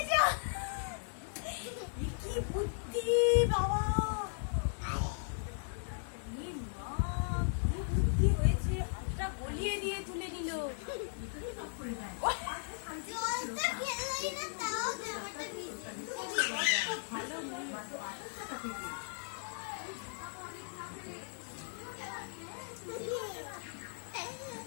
কি বুদ্ধি বাবা কি বুদ্ধি হয়েছে হাতটা গলিয়ে দিয়ে তুলে নিল জলটা খেলেই না তাও জামাটা ভিজে ভালো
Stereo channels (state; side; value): silent; right; 53 dB below the other